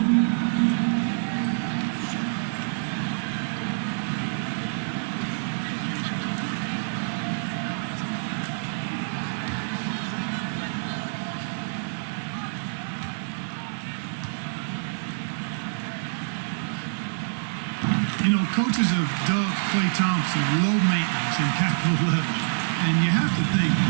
Coaches have dubbed Klay Thompson low maintenance in capital letters. And you have to think,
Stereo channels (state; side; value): silent; left; digital silence